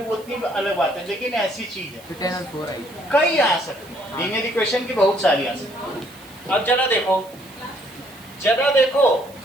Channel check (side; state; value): right; noise; hiss, 23 dB below the sound